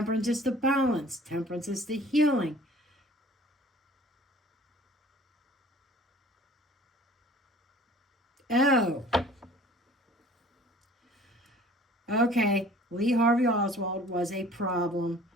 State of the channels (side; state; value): both; normal; correlation 0.49